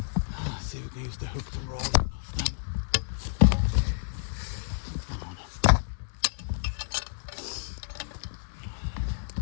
Let's see if we can use the hook to roll it off then. Come on.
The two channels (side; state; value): right; silent; digital silence